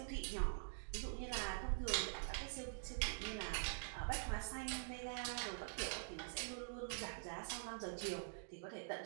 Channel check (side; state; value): left; silent; digital silence